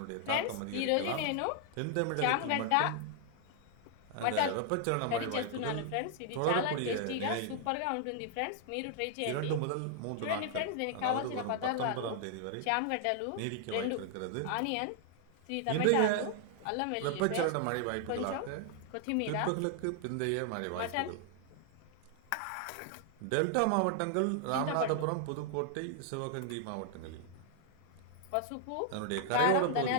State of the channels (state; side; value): different; both; correlation 0.00